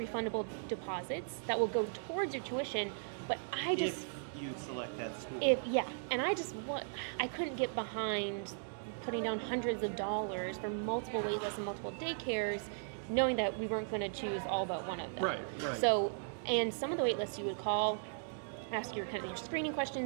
deposits that will go towards your tuition. But I just... If you select that school. And I couldn't get behind putting down hundreds of dollars for multiple wait lists and multiple daycares, knowing that we weren't going to choose all but one of them. Right. So, and some of the wait lists you would call, ask your kind of your screening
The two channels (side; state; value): left; silent; digital silence